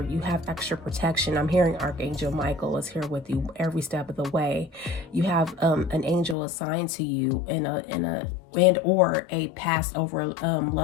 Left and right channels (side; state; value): right; drops out; at 6.4 s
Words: have extra protection. I'm hearing Archangel Michael is here with you every step of the way. You have an angel assigned to you or a passed over